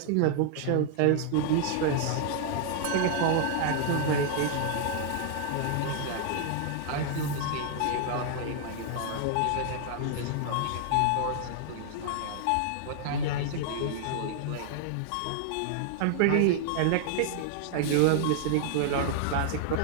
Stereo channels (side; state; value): both; different; correlation -0.01